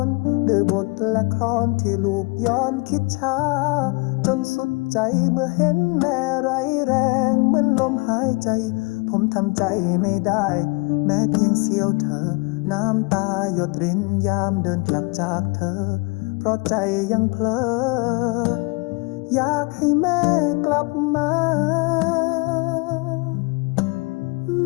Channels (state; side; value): quieter; right; 29.0 dB